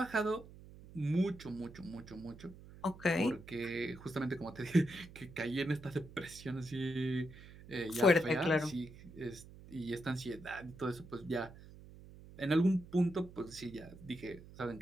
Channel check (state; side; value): noise; right; hum, 18 dB below the sound